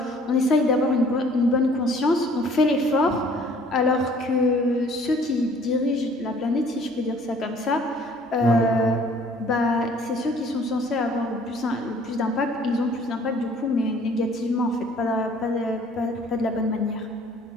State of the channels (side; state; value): both; normal; correlation 0.56